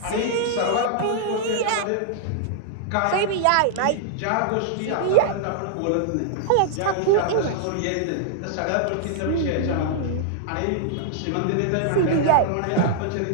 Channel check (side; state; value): both; different; correlation -0.01